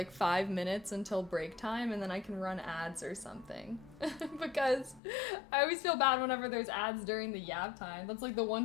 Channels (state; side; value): drops out; right; at 5.0 s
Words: 5 minutes until break time and then I can run ads or something. Because I always feel bad whenever there's ads during the yap time. That's like the